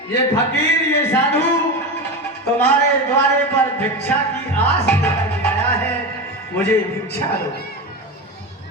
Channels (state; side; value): normal; both; correlation 0.21